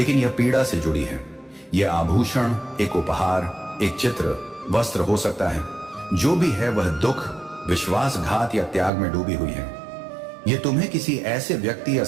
यह पीड़ा से जुड़ी है। यह आभूषण, एक उपहार, एक चित्र, वस्त्र हो सकता है। जो भी है वह दुख, विश्वासघात या त्याग में डूबी हुई है। यह तुम्हें किसी ऐसे व्यक्ति या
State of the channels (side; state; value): left; drops out; at 8.9 s